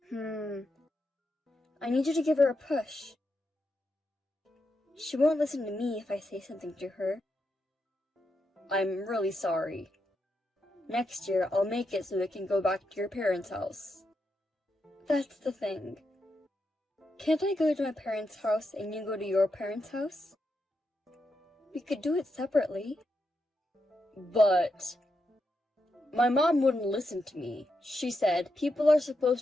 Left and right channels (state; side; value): normal; both; correlation 0.84